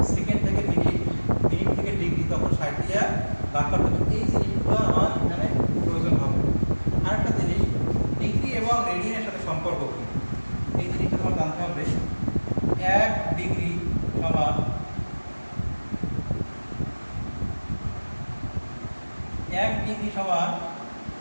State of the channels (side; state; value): both; inverted; correlation -1.00